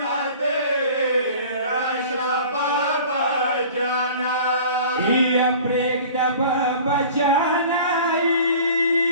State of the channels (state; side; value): inverted; both; correlation -0.44